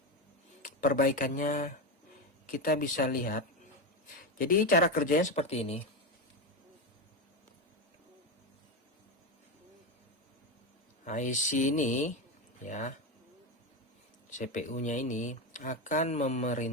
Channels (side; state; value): both; normal; correlation 0.14